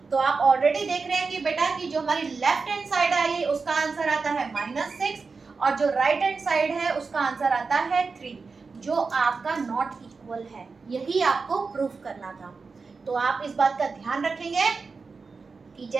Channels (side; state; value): left; quieter; 4.5 dB